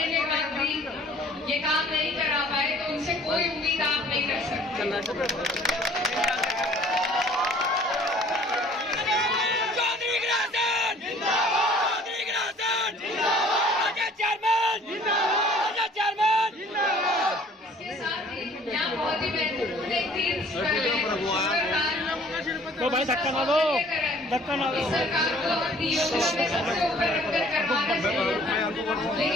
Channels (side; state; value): both; normal; correlation 0.53